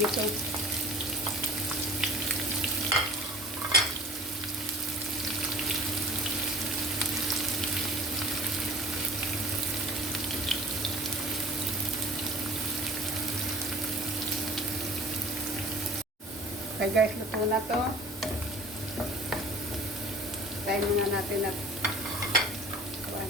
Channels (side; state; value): both; normal; correlation 0.44